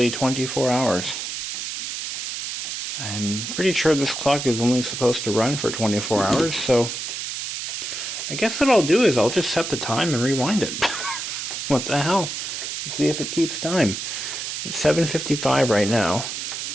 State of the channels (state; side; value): noise; right; hiss, 5 dB below the sound